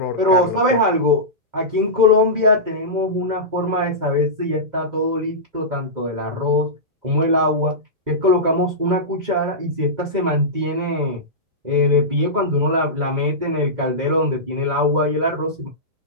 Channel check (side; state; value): left; late; 2.0 ms